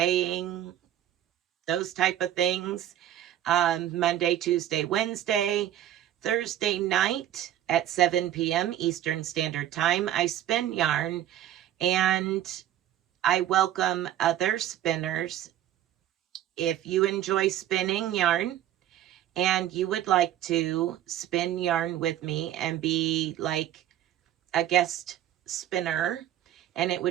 those type of things. Monday, Tuesday, Wednesday, Thursday night at 7 p.m. Eastern Standard Time, I spin yarn, and I welcome other spinners. If you enjoy spinning yarn and you would like to spin yarn with me and be like a guest spinner, and it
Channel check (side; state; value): left; quieter; 11.9 dB